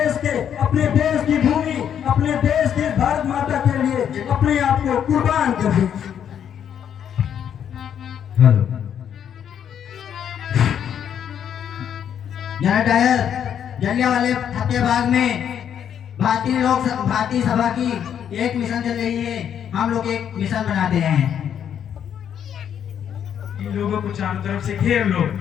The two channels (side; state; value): right; quieter; 8.9 dB